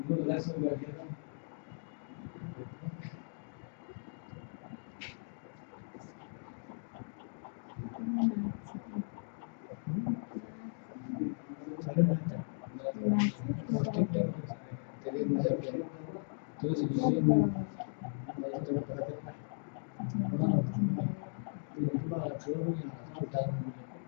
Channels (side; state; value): right; silent; digital silence